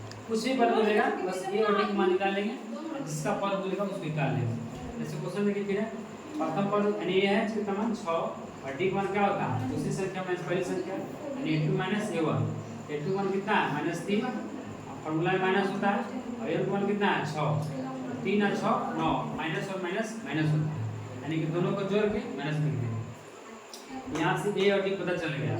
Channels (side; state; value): both; identical; correlation 1.00